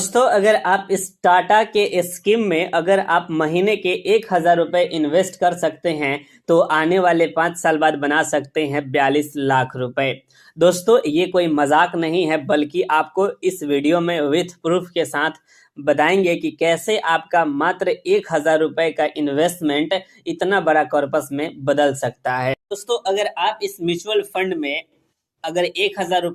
अगर आप इस टाटा के स्कीम में अगर आप महीने के 1,000 रुपए इन्वेस्ट कर सकते हैं तो आने वाले 5 साल बाद बना सकते हैं 42 लाख रुपए। दोस्तों, ये कोई मजाक नहीं है, बल्कि आपको इस वीडियो में विथ प्रूफ के साथ बताएंगे कि कैसे आपका मात्र 1,000 रुपए का इन्वेस्टमेंट इतना बड़ा कॉर्पस में बदल सकता है। दोस्तों, अगर आप इस म्यूचुअल फंड में अगर 1,000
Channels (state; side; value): identical; both; correlation 1.00